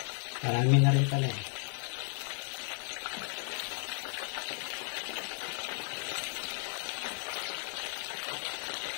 Marami na rin pala.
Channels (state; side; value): silent; right; 55 dB below the other